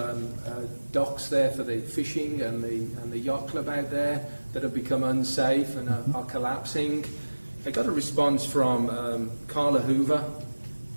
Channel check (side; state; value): both; inverted; correlation -1.00